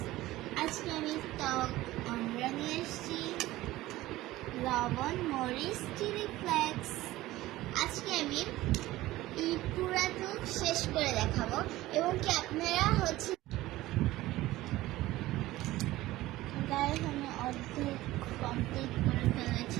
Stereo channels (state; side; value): quieter; left; 17.0 dB